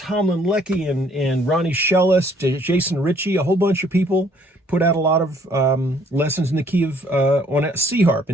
Leckie and Ronnie Shellis, Jason Ritchie, a whole bunch of people put out a lot of lessons in the key of, on a C harp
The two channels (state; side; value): normal; both; correlation 0.62